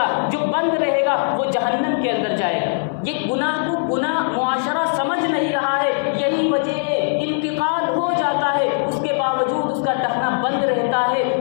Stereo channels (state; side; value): silent; right; digital silence